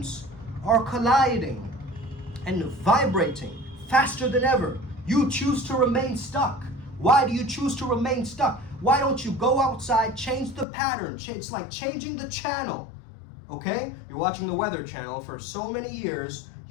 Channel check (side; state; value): right; drops out; at 10.7 s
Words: are colliding and vibrating faster than ever. You choose to remain stuck. Why do you choose to remain stuck? Why don't you go outside, change the pattern? It's like changing the channel, okay? You're watching the Weather Channel for so many years,